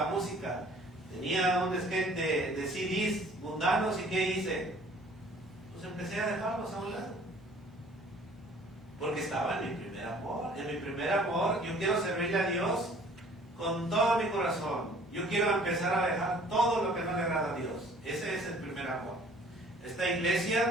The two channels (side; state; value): right; noise; hum, 27 dB below the sound